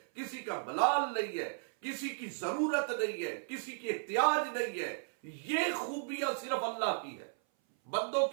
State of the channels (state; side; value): silent; left; 54 dB below the other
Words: کسی کا ملال نہیں ہے، کسی کی ضرورت نہیں ہے، کسی کی احتیاج نہیں ہے۔ یہ خوبیاں صرف اللہ کی ہے، بندوں